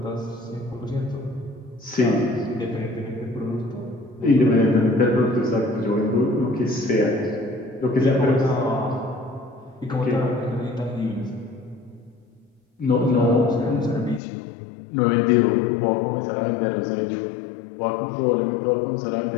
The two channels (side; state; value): right; drops out; at 14.2 s